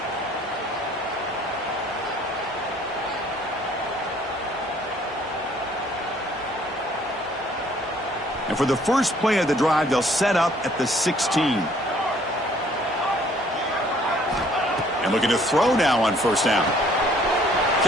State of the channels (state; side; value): normal; both; correlation 0.60